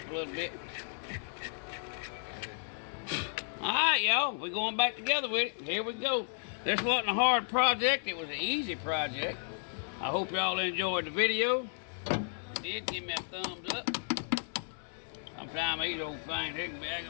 a little bit. All right, y'all. We're going back together with it. Here we go. This wasn't a hard project. It was an easy project. I hope y'all enjoyed the video. If you did, give me a thumbs up. Sometimes these old things, they can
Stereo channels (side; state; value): right; silent; digital silence